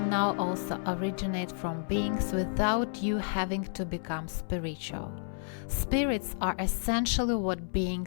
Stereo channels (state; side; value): silent; right; 57 dB below the other